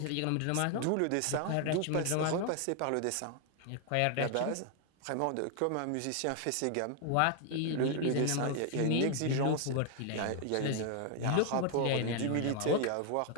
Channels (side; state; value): both; different; correlation 0.00